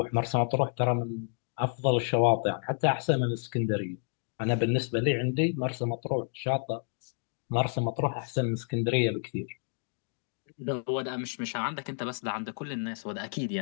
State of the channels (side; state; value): right; silent; digital silence